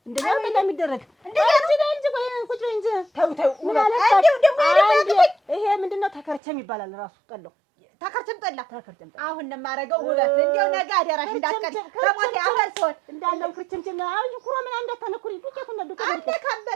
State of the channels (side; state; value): left; drops out; at 6.4 s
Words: እንደዚህ ነው የሚደረግ። እንደዚህ እንጂ ቆይ ቁጭ በይ እንጂ ተው ምን አለ ይሄ ምንድነው ተከርቸም ይባላል ራሱ ጠላው ተከርቸም ጠላ አሁን ነው የማደርገው ውበት እንደው ነገ አደራሽ እንዳትቀር ከሞት ያፈር ሰው እንዳለው ክርችምችም አሁን ኩሮ ምን እንዳታነኩሪ ዱቄቱ ነው